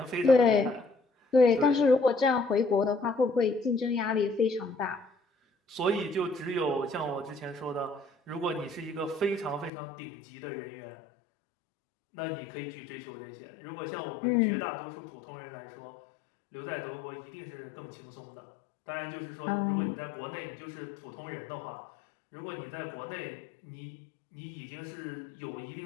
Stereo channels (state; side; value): drops out; right; at 9.7 s